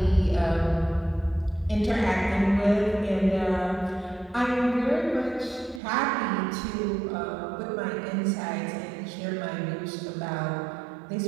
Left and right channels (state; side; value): drops out; left; at 5.8 s